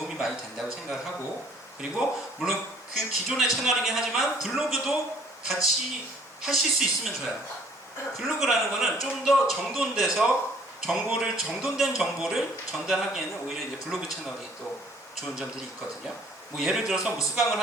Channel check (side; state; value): both; normal; correlation 0.58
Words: 많이 된다고 생각을 하고, 그리고 물론 그 기존의 채널이긴 하지만 블로그도 같이 하실 수 있으면 좋아요. 블로그라는 거는 좀 더 정돈돼서 정돈된 정보를 전달하기에는 오히려 이제 블로그 채널이 또 좋은 점들이 있거든요. 뭐 예를 들어서 뭐 수강을